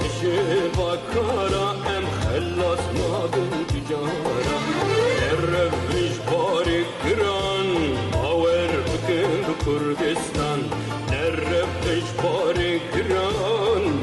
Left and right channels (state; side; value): identical; both; correlation 1.00